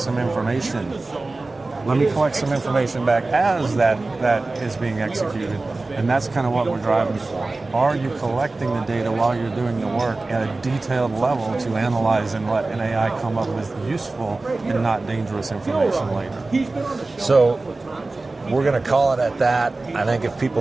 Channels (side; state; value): left; quieter; 3.3 dB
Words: information. Let me collect some information back as that is being executed. And that's kind of what we're driving for. Are you collecting the data while you're doing the work at a detailed level to analyze and let an AI come up with useful and not dangerous information later? So we're going to call it at that. I think if